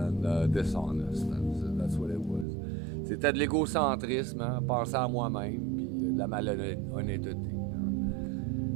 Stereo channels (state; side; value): drops out; left; at 2.5 s